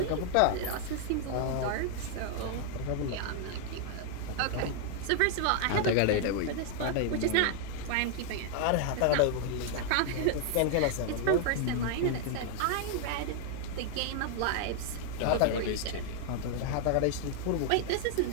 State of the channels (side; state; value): both; different; correlation 0.00